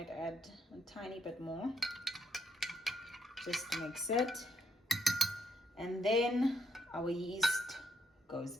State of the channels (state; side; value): normal; both; correlation 0.74